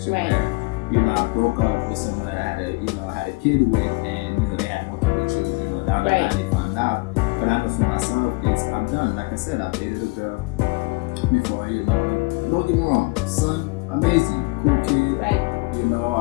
where, I broke up with someone that I had a kid with, and they had multiple children. Down the line they found out. But I know for myself, I'm done. Like I said, I dated a girl before. Don't get me wrong, son, amazing, cool kid. Right.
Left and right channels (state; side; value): quieter; right; 26.2 dB